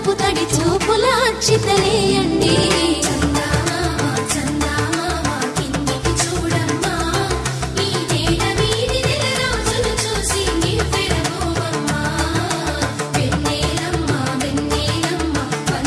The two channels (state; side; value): identical; both; correlation 1.00